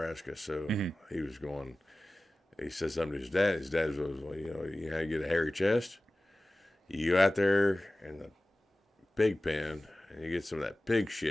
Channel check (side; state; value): both; normal; correlation 0.97